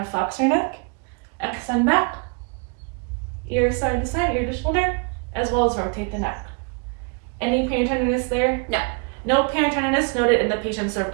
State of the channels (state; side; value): quieter; left; 35.1 dB